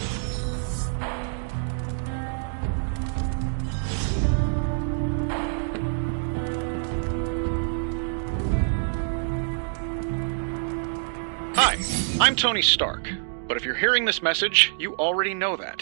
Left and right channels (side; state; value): left; silent; digital silence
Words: Hi, I'm Tony Stark. But if you're hearing this message, you already know